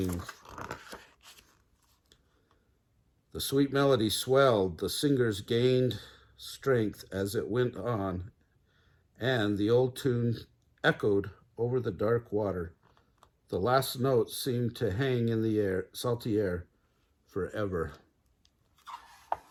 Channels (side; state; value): both; identical; correlation 1.00